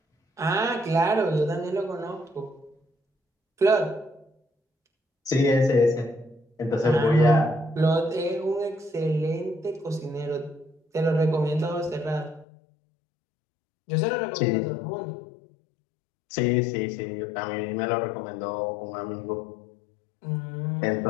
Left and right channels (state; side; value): drops out; right; at 12.5 s